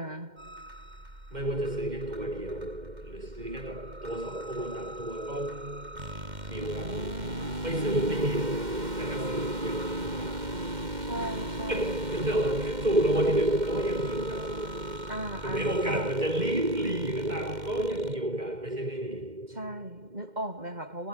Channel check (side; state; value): left; late; 2.1 ms